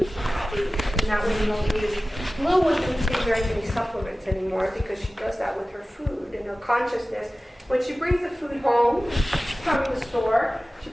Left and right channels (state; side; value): normal; both; correlation 0.96